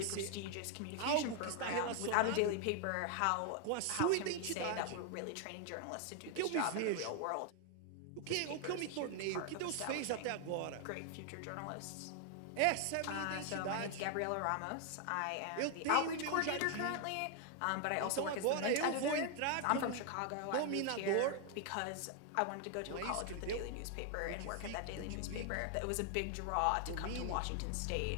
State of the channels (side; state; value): both; different; correlation 0.00